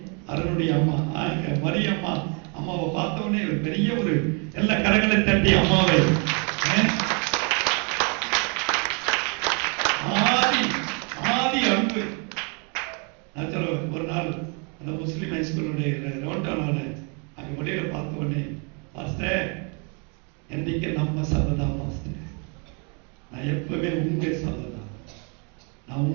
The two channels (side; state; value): left; quieter; 35.6 dB